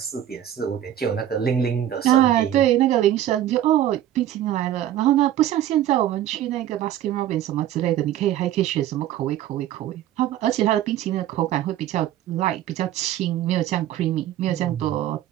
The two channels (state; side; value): quieter; left; 11.9 dB